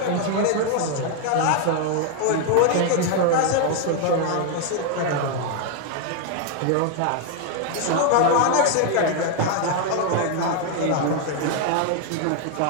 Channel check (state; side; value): different; both; correlation 0.00